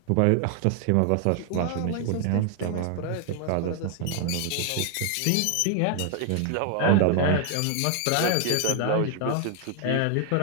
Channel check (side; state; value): both; different; correlation 0.00